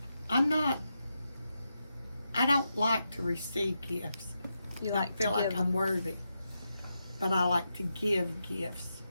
I don't like to receive gifts. You I like feel to like give I'm them. worthy. But I like to give gifts.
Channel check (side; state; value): both; inverted; correlation -0.86